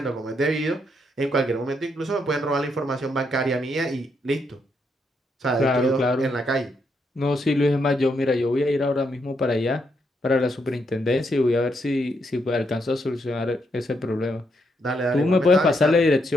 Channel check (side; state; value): both; normal; correlation 0.78